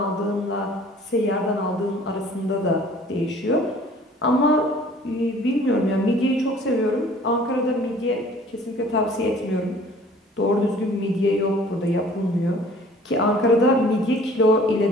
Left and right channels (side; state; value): both; normal; correlation 0.51